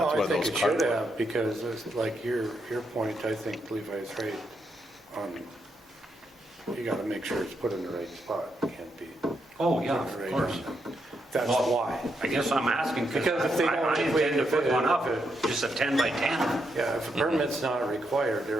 that's I why think those it should cardboard- have, because it's like your point, I think Levi's right on, you gotta make sure it's put in the right spot, it can't be. Oh, yeah, put of right course. on. That's Well, why. I guess I'm asking Because because if they I don't- intend to put one up, if just a 10 by 10, Yeah, if a permit's not required,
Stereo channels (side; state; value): both; normal; correlation 0.80